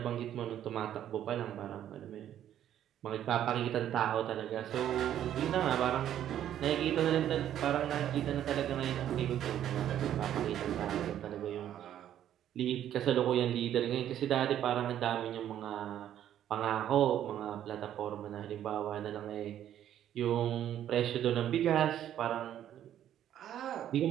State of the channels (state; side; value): quieter; left; 11.0 dB